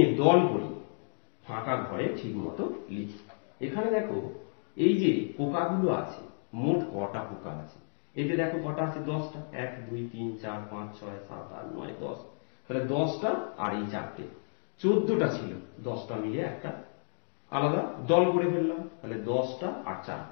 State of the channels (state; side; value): silent; right; digital silence